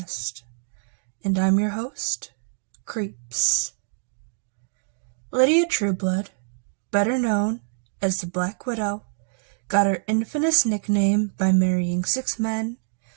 and I'm your host, Creeps. Lydia Trueblood, better known as the Black Widow, got her infamous nickname by marrying 6 men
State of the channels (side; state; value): left; silent; digital silence